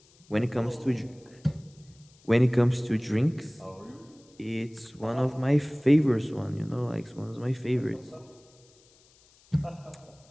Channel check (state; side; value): noise; left; hiss, 29 dB below the sound